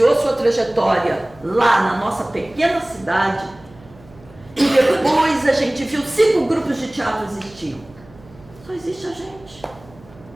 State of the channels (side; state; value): right; noise; hum, 24 dB below the sound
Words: sua trajetória lá na nossa pequena cidade, e depois a gente viu 5 grupos de teatro existiam, só existe a gente.